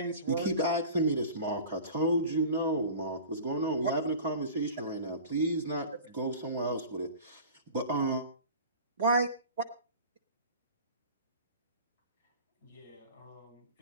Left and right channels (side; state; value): both; inverted; correlation -0.39